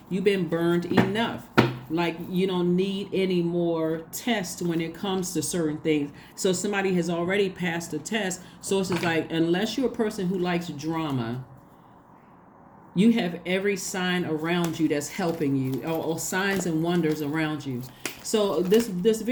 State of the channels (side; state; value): both; identical; correlation 1.00